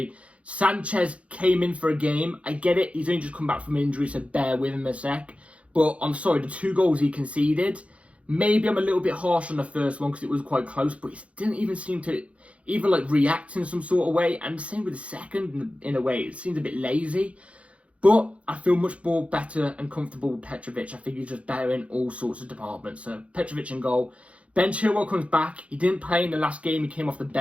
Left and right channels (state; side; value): late; left; 0.063 ms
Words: Sanchez came in for a game. I get it, he's only just come back from injury, so bear with him a sec. But I'm sorry, the 2 goals he conceded, maybe I'm a little bit harsh on the first one because it was quite close, but he didn't even seem to even like react in some sort of way. And the same with the second, in a way, it seemed a bit lazy. But I feel much more better and comfortable with Petrovic. I think he's just better in all sorts of departments. So Petrovic in goal. Ben Chilwell comes back. He didn't play in the last game. He came off the